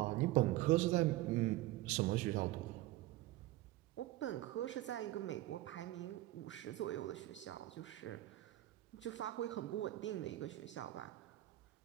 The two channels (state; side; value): quieter; left; 16.7 dB